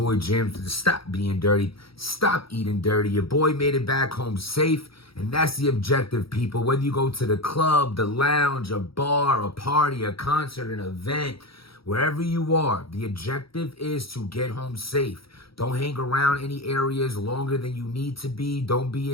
Jim. Stop being dirty. Stop eating dirty. Your boy made it back home safe. And that's the objective, people. Whether you go to the club, the lounge, a bar, a party, a concert, an event, wherever you are, the objective is to get home safe. Don't hang around any areas longer than you need to be. Don't be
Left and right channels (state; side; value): late; right; 0.75 ms